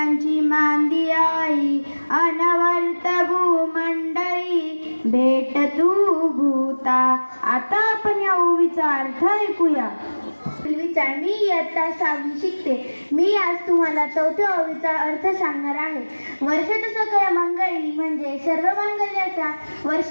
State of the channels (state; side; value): inverted; both; correlation -1.00